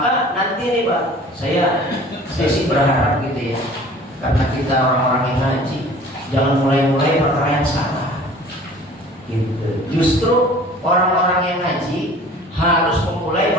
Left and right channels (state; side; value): normal; both; correlation 0.47